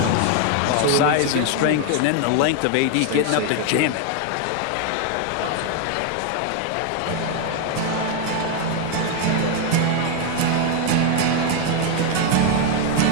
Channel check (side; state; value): both; different; correlation 0.01